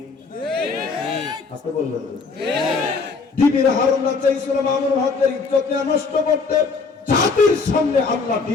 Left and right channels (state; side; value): quieter; right; 4.6 dB